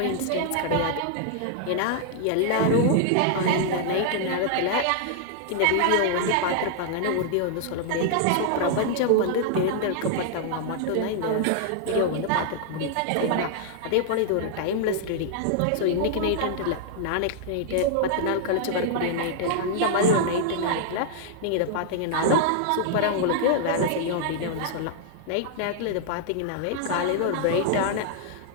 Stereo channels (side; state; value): both; different; correlation -0.01